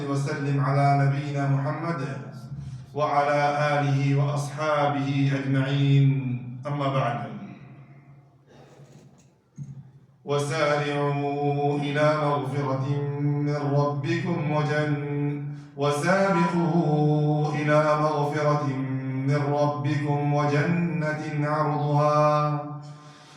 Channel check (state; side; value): identical; both; correlation 1.00